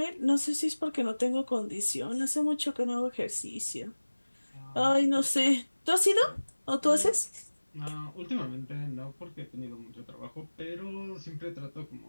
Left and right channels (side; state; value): both; inverted; correlation -1.00